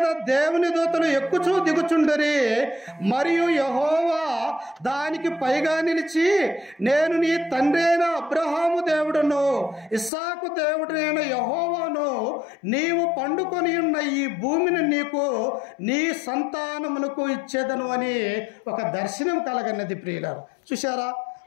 దేవుని దూతలు ఎక్కుచూ దిగుచుండరి, మరియు యెహోవా దానికి పైగా నిలిచి, నేను నీ తండ్రి అయిన అబ్రహాము దేవుడును ఇస్సాకు దేవుడైన యెహోవాను, నీవు పండుకొని ఉన్న ఈ భూమిని నీకు నీ సంతానమునకు ఇచ్చేదను అని ఒక దర్శనం కలగన్నది ప్రియులారా. చూశారా?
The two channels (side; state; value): right; drops out; at 10.1 s